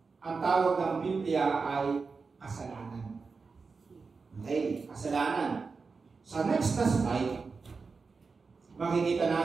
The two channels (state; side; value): quieter; left; 4.6 dB